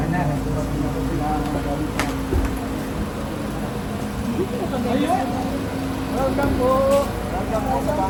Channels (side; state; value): both; identical; correlation 1.00